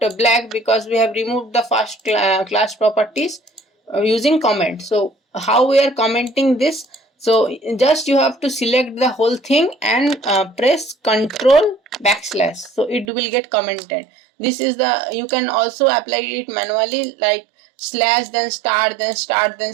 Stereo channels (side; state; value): left; drops out; at 13.1 s